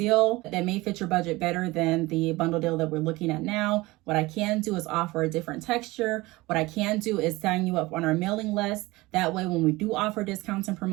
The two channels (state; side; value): quieter; left; 20.9 dB